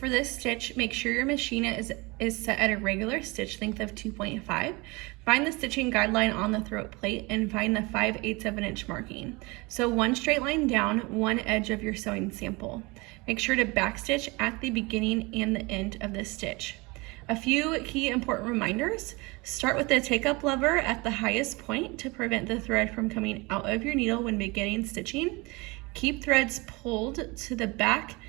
this stitch, make sure your machine is set at a regular stitch length of 2.5. Find the stitching guideline on the throat plate and find the 5/8 of an inch marking. So one straight line down, one edge of your sewing sample. Make sure to backstitch at the beginning and the end of this stitch. A few key important reminders. Start with the take-up lever at the highest point to prevent the thread from coming out of your needle when beginning stitching. Keep threads pulled to the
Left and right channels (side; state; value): left; quieter; 25.4 dB